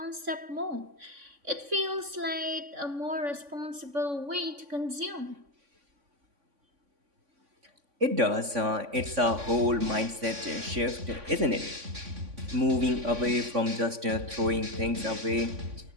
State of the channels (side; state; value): left; late; 3.5 ms